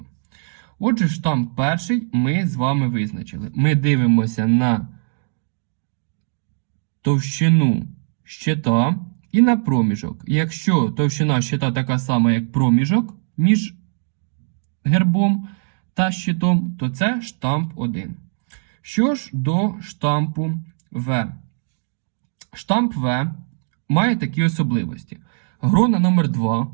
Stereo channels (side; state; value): left; silent; 65 dB below the other